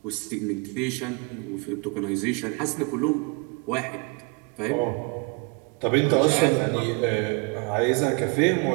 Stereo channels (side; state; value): left; quieter; 30.3 dB